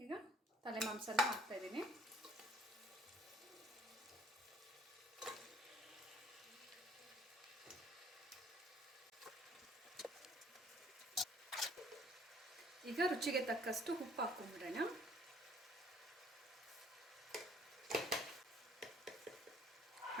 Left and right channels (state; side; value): normal; both; correlation 0.58